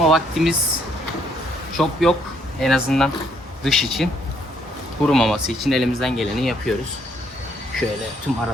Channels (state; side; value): normal; both; correlation 0.69